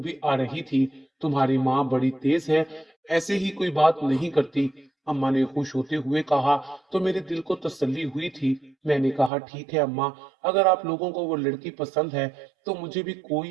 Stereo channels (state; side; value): drops out; left; at 9.3 s